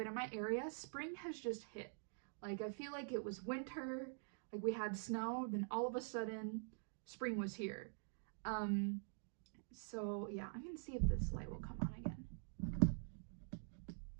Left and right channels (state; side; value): silent; left; digital silence